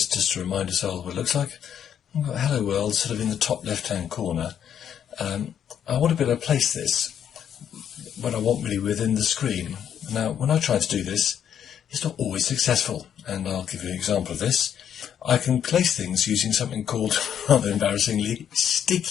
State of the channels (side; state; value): right; quieter; 9.1 dB